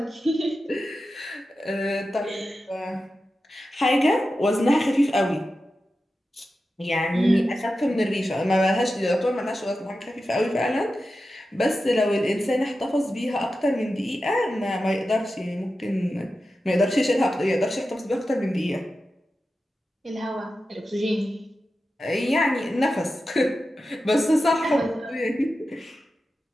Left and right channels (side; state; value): both; normal; correlation 0.92